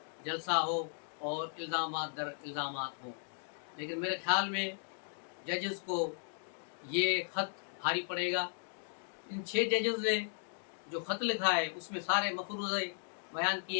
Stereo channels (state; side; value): silent; right; 54 dB below the other